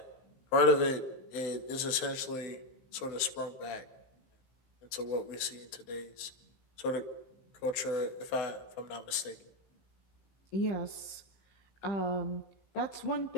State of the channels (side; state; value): right; late; 15 ms